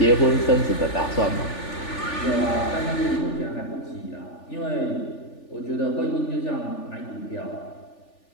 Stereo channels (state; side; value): late; right; 3.4 ms